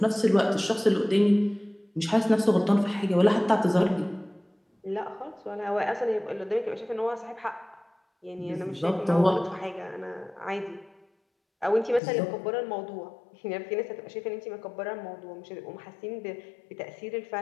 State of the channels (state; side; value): drops out; right; at 12.0 s